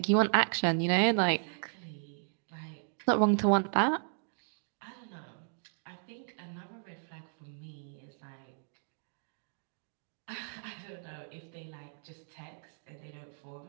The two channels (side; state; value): left; silent; digital silence